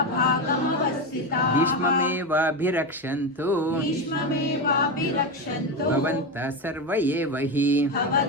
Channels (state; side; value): normal; both; correlation 0.15